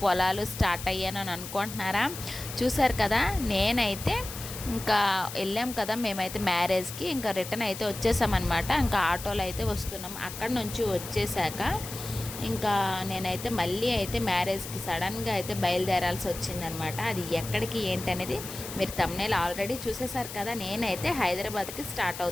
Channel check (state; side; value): noise; left; hiss, 10 dB below the sound